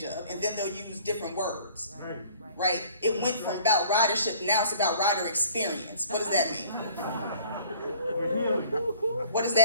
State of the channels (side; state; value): both; inverted; correlation -0.53